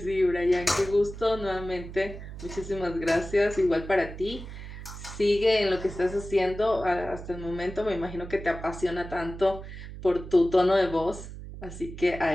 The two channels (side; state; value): right; noise; hum, 12 dB below the sound